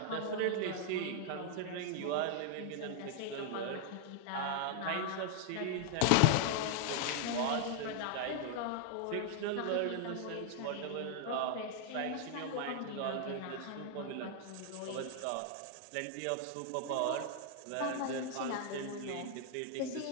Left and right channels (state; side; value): different; both; correlation 0.00